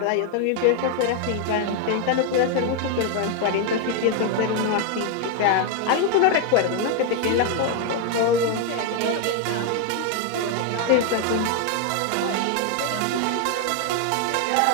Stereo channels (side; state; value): both; different; correlation 0.01